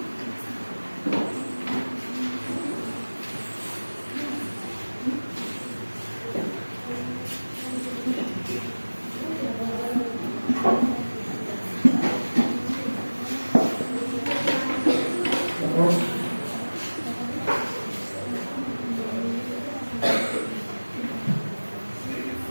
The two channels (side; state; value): both; inverted; correlation -1.00